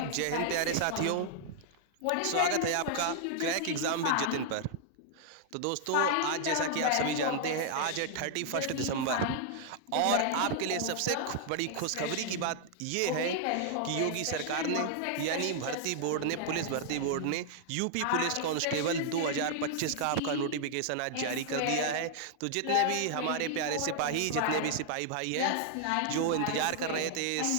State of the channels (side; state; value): both; different; correlation -0.01